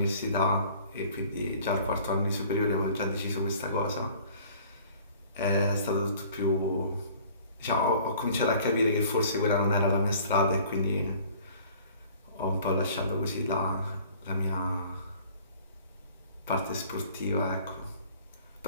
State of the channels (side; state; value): both; inverted; correlation -0.51